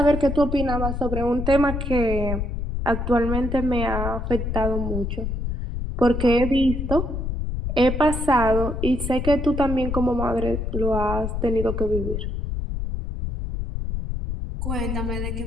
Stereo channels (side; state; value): left; noise; rumble, 3 dB below the sound